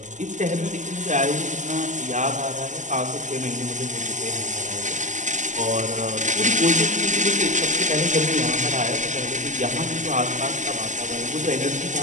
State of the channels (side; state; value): left; late; 0.35 ms